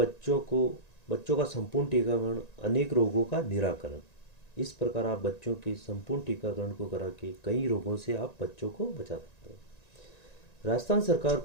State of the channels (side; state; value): right; late; 1.9 ms